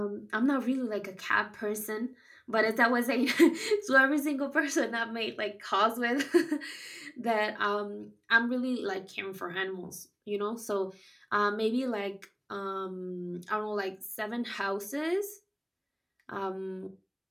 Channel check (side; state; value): both; identical; correlation 1.00